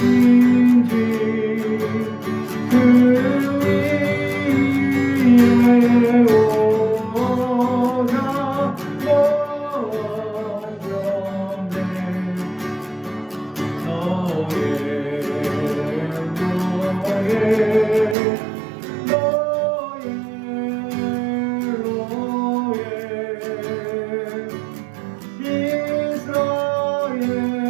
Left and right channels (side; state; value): left; drops out; at 18.2 s